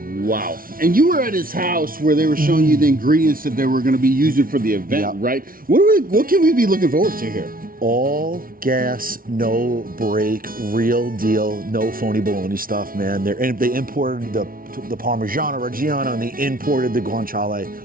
Wow. And you were at his house where they were showing you the ingredients that they were going to be using for the event, Yep. right? What can we be looking forward to here? All gas, no break, real deal, no phony baloney stuff, man. They imported the Parmigiano Reggiano and they imported the guanciale.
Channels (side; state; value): left; late; 0.42 ms